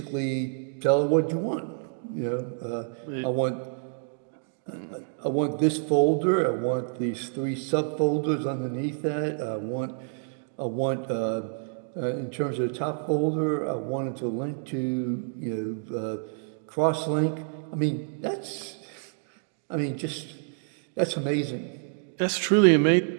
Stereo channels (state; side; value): silent; left; digital silence